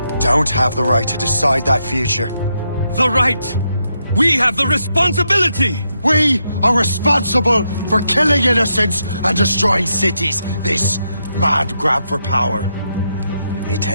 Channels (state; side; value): inverted; both; correlation -0.81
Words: don't have the right to decide that future. The right! We have the responsibility! We are responsible for killing innocents and destroying cities. This mad grab for power. It